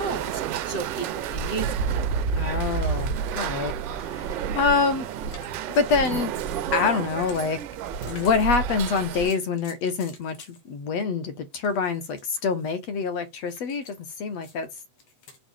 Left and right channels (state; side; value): late; right; 8.2 ms